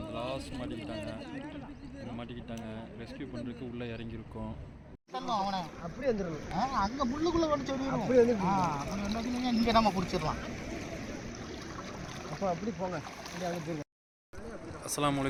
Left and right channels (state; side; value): identical; both; correlation 1.00